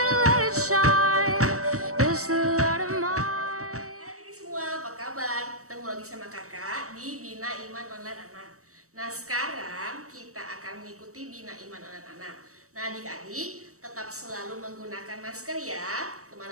let it shine. This the light of mine. Hai semua, apa kabar? Ketemu lagi sama kakak di Bina Iman Online Anak. Nah sekarang kita akan mengikuti Bina Iman Online Anak. Nah adik-adik tetap selalu menggunakan masker ya.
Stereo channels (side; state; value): left; late; 0.65 ms